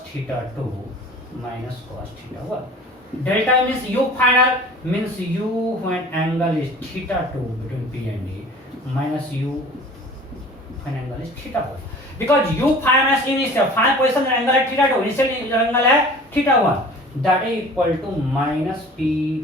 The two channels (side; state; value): both; normal; correlation 0.44